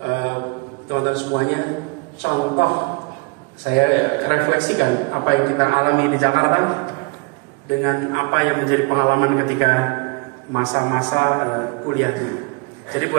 teman-teman semuanya contoh. Saya refleksikan apa yang kita alami di Jakarta dengan apa yang menjadi pengalaman ketika masa-masa kuliah dulu. Jadi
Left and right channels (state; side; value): quieter; left; 29.9 dB